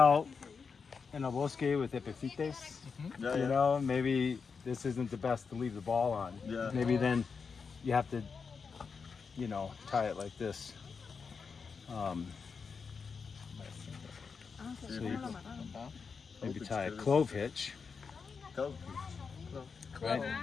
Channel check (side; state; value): right; quieter; 5.5 dB